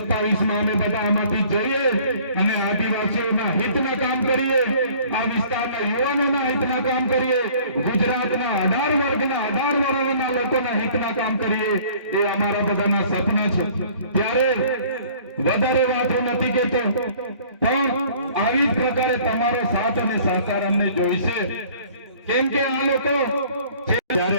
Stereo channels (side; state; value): both; inverted; correlation -0.53